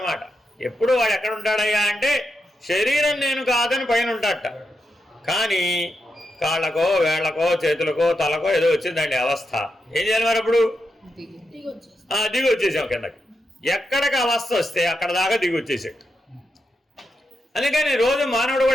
ఎప్పుడు వాడు ఎక్కడ ఉంటాడయ్యా అంటే, శరీరం నేను కాదని పైన ఉంటాడట, కానీ కాళ్ళకో వేళ్లకో చేతులకో తలకో ఏదో వచ్చిందండి అవస్థ. ఏం చేయాలి మరి అప్పుడు? దిగి వచ్చేసాం కిందకి. ఎక్కడికి అవస్థ వస్తే అక్కడ దాకా దిగి వచ్చేసాడు. అందుకని రోజు మానవుడు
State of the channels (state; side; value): normal; both; correlation 0.86